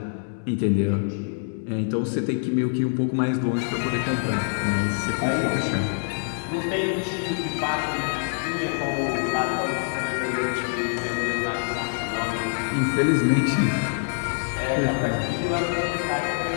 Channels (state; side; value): silent; right; digital silence